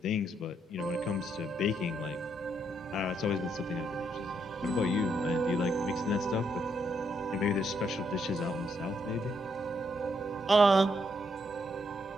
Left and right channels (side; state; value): both; normal; correlation 0.75